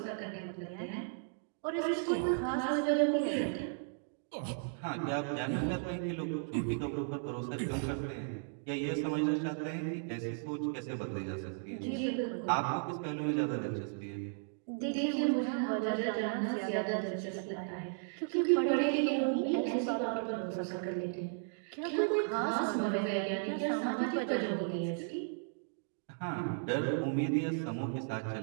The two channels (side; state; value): left; silent; digital silence